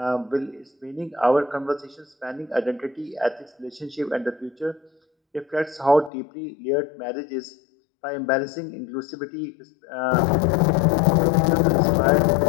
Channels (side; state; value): right; drops out; at 6.1 s